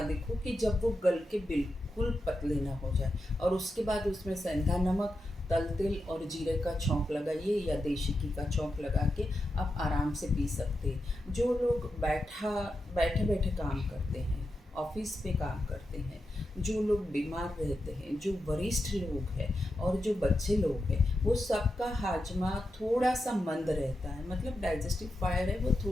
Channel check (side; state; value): both; normal; correlation 0.88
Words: देखो कि जब वो गल के बिल्कुल पतले ना हो जाए, और उसके बाद उसमें सेंधा नमक, तल तेल और जीरे का छौंक लगाइए या देशी घी का छौंक लगा के आप आराम से पी सकते हैं। जो लोग बैठे बैठे काम करते हैं, ऑफिस पे काम करते हैं, जो लोग बीमार रहते हैं, जो वरिष्ठ लोग हैं और जो बच्चे लोग हैं, वो सबका हाजमा थोड़ा सा मंद रहता है। मतलब डाइजेस्टिव फायर है वो